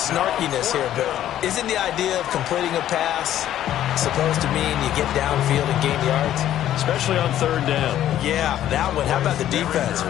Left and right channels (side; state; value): right; quieter; 12.0 dB